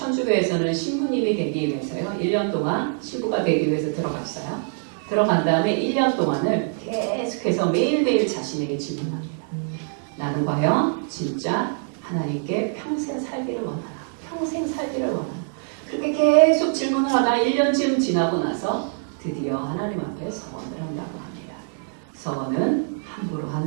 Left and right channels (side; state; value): left; silent; digital silence